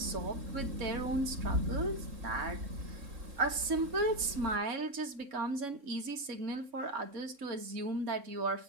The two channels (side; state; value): left; late; 3.6 ms